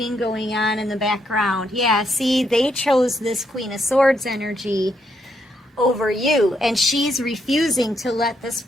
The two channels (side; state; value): both; normal; correlation 0.77